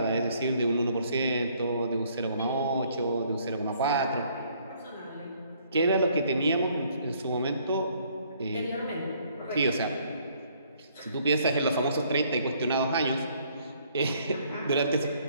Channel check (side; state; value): both; inverted; correlation -0.64